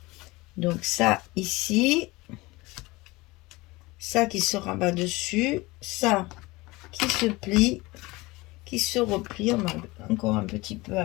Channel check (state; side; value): quieter; right; 22.1 dB